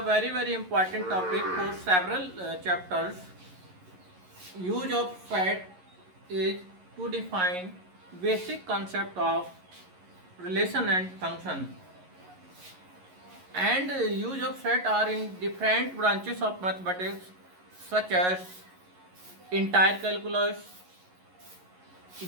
important topic for several chapters. Use of set is to define basic concept of relation and function. And use of set are in different branches of mathematics such as entire calculus,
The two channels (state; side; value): late; left; 11 ms